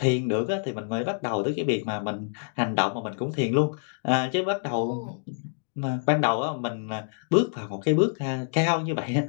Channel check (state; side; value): silent; right; digital silence